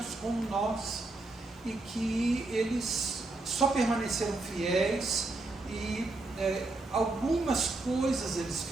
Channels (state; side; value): quieter; left; 3.1 dB